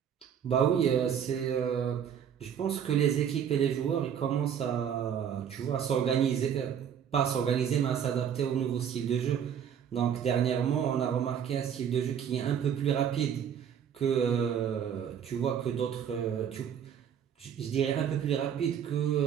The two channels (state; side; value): quieter; left; 8.5 dB